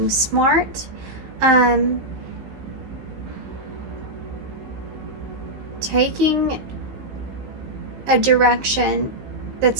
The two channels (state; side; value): late; left; 15 ms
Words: smart. Taking a direction